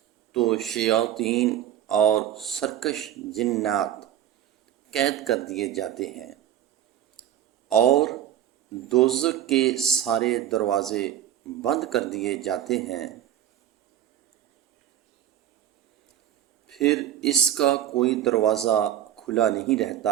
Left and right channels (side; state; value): left; quieter; 11.2 dB